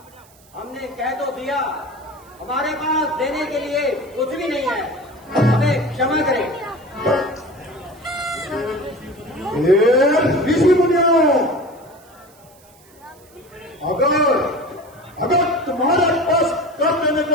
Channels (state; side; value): noise; right; hiss, 28 dB below the sound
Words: हमने कह तो दिया, हमारे पास देने के लिए कुछ भी नहीं।